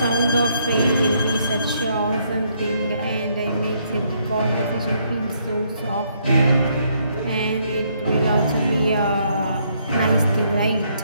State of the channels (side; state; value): both; inverted; correlation -0.71